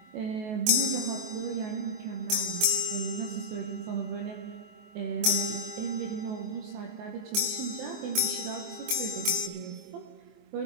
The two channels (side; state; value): left; late; 24 ms